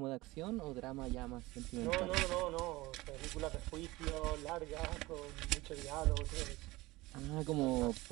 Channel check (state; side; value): quieter; left; 20.1 dB